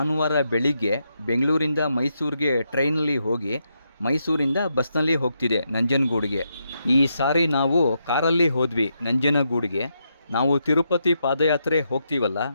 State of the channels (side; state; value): both; inverted; correlation -0.81